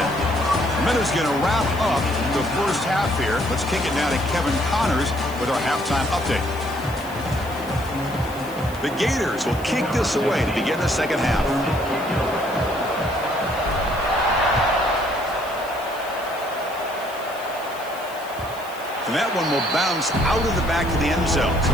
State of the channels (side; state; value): left; noise; hiss, 19 dB below the sound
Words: Minuta's going to wrap up the first half here. Let's kick it now to Kevin Connors with our halftime update. The Gators will kick this away to begin the second half. And that one will bounce out of the back of the end zone.